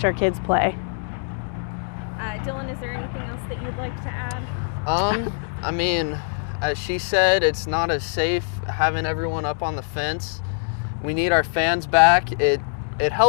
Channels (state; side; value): silent; right; 63 dB below the other